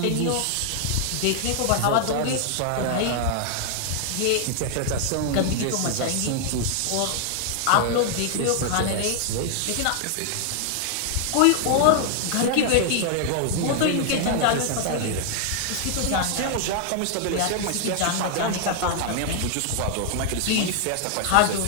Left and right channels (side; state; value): both; different; correlation 0.00